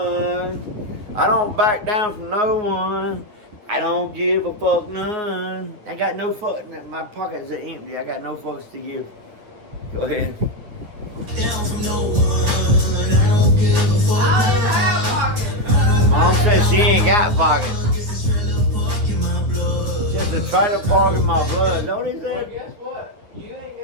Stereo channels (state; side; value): late; left; 9.6 ms